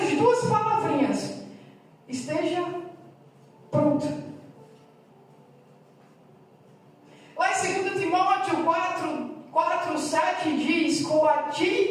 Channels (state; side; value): identical; both; correlation 1.00